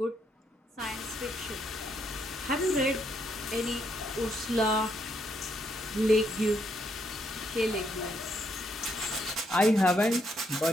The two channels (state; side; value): normal; both; correlation 0.75